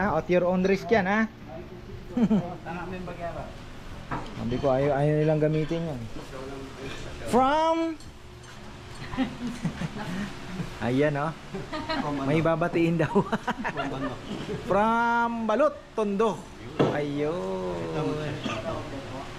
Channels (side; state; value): both; identical; correlation 1.00